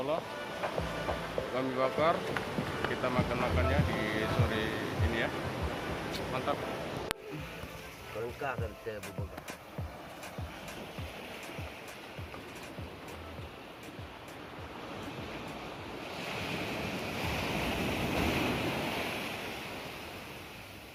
kami bakar, kita makan-makannya di sore ini ya. Mantap. Lengkap kita bubur.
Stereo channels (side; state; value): both; identical; correlation 1.00